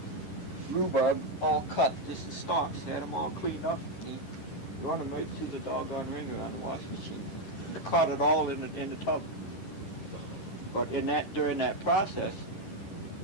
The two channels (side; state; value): right; late; 10 ms